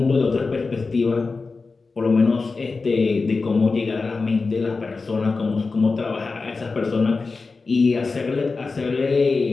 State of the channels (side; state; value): right; quieter; 4.1 dB